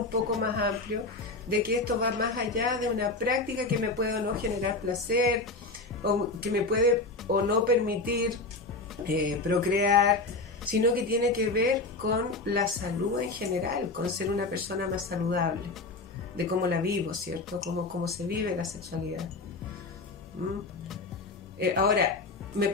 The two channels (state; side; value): quieter; right; 3.4 dB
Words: poco más amplio, de que esto va más allá de una práctica que me puede o no generar placer, o que me puede o no permitir procrear, sino que tiene que ver con la salud en general, con ser una persona más saludable, de cómo la vivo, ¿cierto? Cómo se vive la sexualidad. Ahora, me